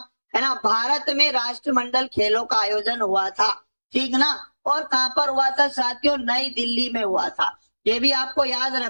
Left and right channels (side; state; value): both; inverted; correlation -1.00